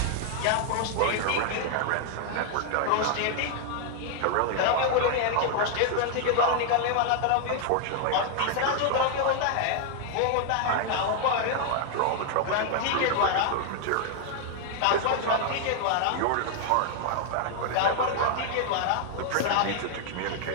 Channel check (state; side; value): different; both; correlation 0.00